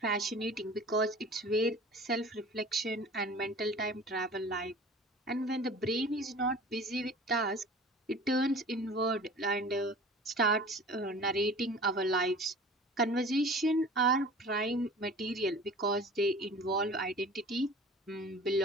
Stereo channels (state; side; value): normal; both; correlation 0.42